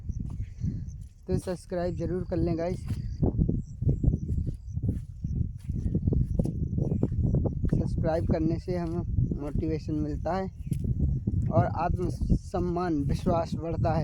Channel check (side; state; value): both; identical; correlation 1.00